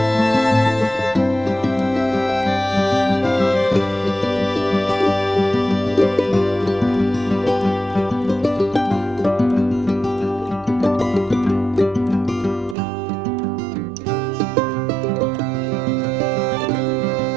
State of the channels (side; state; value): left; drops out; at 12.8 s